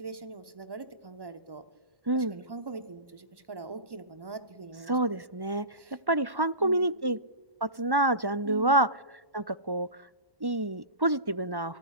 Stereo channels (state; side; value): late; left; 1.1 ms